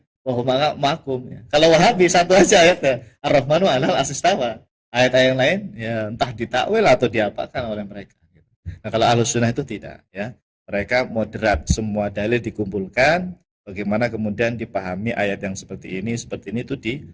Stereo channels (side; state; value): both; identical; correlation 1.00